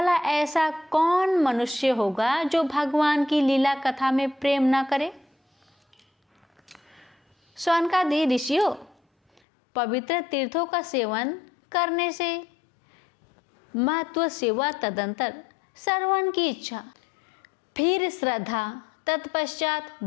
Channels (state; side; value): drops out; right; at 9.4 s